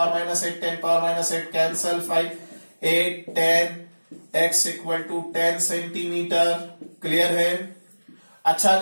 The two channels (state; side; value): inverted; both; correlation -1.00